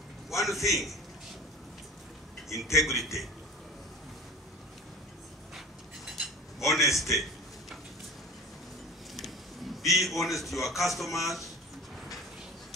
One thing, integrity, honesty. Be honest to your customers.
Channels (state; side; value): normal; both; correlation 0.38